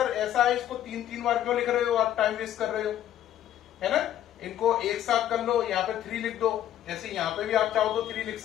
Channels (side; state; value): right; quieter; 11.6 dB